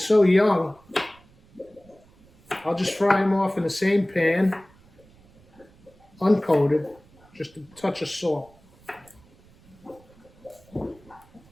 young. I'll just fry them off in the same pan, uncoated, just a touch of salt.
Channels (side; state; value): right; noise; rumble, 28 dB below the sound